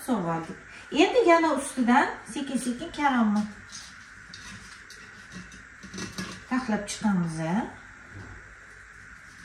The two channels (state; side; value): identical; both; correlation 1.00